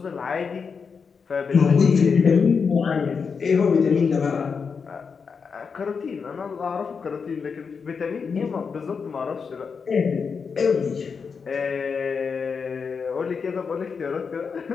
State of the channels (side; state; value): right; quieter; 5.7 dB